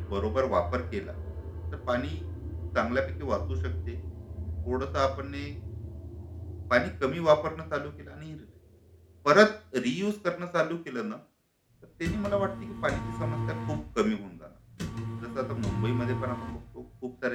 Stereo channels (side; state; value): both; identical; correlation 1.00